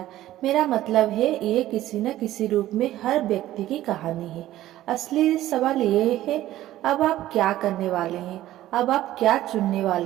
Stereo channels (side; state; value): left; quieter; 14.3 dB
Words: मेरा मतलब है ये किसी न किसी रूप में हर व्यक्ति की कहानी है। असली सवाल ये है, अब आप क्या करने वाले हैं? अब आप क्या चुनने